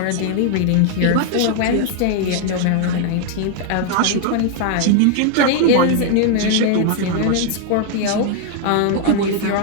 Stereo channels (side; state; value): both; different; correlation 0.00